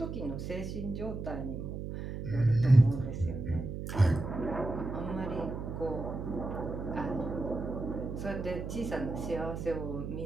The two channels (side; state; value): right; noise; hum, 6 dB below the sound